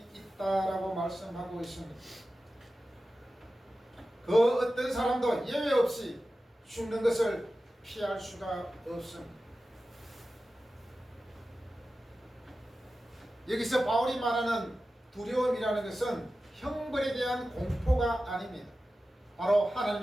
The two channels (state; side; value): normal; both; correlation 0.94